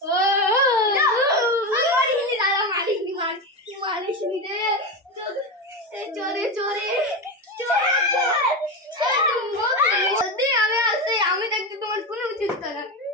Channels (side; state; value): both; normal; correlation 0.17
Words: মারিনি দাদা মারিনি রে চোরে চোরে আমি আসছি আমি দেখতে তোমার কোনো উচিত না